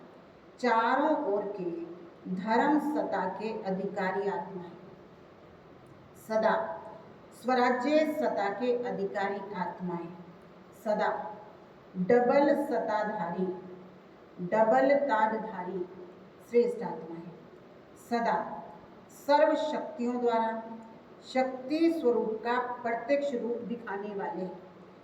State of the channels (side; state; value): both; identical; correlation 1.00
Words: चारों ओर के धर्म सत्ता के अधिकारी आत्माएं, सदा स्वराज्य सत्ता के अधिकारी आत्माएं, सदा डबल सत्ताधारी, डबल ताजधारी श्रेष्ठ आत्माएं, सदा सर्व शक्तियों द्वारा शक्ति स्वरूप का प्रत्यक्ष रूप दिखाने वाले